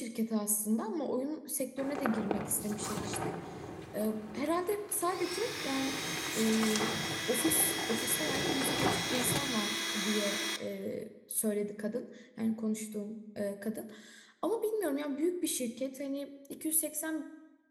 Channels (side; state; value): both; identical; correlation 1.00